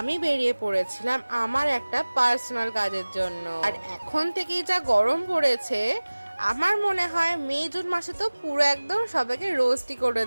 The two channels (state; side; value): inverted; both; correlation -1.00